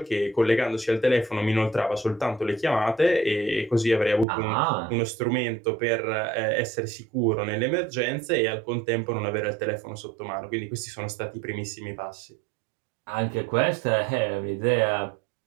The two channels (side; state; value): left; drops out; at 4.2 s